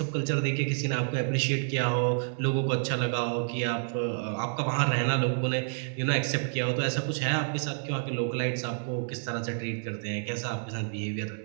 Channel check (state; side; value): silent; left; digital silence